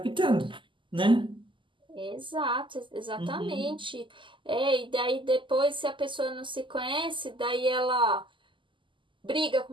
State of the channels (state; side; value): late; left; 0.24 ms